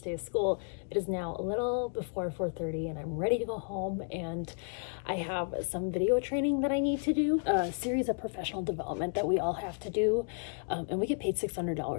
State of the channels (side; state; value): right; silent; 56 dB below the other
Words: day of school. It is now a little before 4:30 and I'm ready to go home, and I have some video training that I need to do, a series of professional development that we all have to do, and we get paid